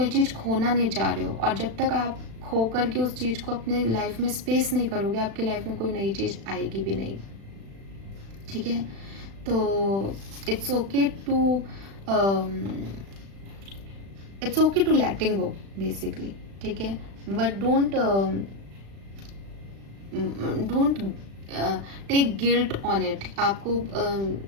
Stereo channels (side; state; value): left; late; 36 ms